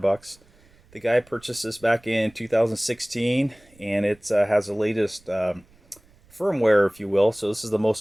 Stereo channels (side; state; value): right; noise; rumble, 29 dB below the sound